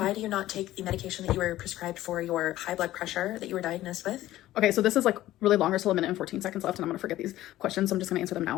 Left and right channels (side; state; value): right; quieter; 14.9 dB